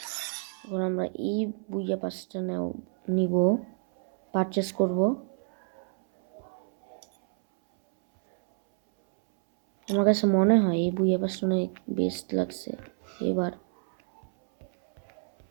আমরা এই বুইয়া পাসটা নিব, পারচেস করব। আমার কাছে মনে হয় এই বুইয়া পাসটা অনেক বেস্ট লাগছে এবার।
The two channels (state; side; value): silent; left; 59 dB below the other